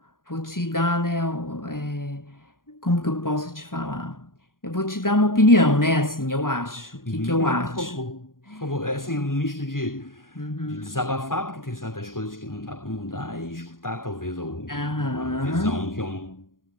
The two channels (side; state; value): right; late; 0.91 ms